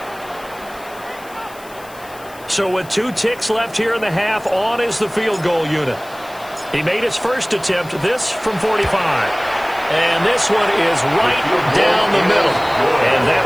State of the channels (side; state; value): left; noise; hiss, 22 dB below the sound